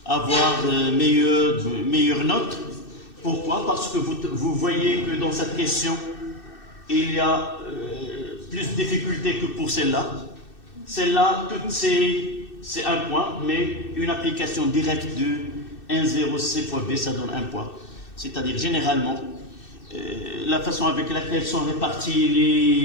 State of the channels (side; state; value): right; late; 2.6 ms